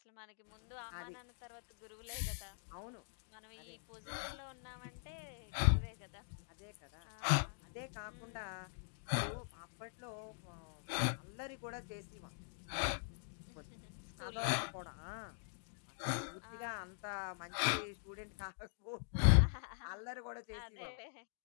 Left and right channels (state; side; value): silent; right; digital silence